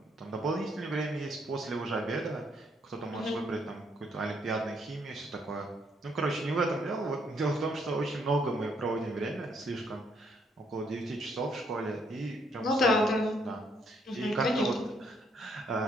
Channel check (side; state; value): both; normal; correlation 0.71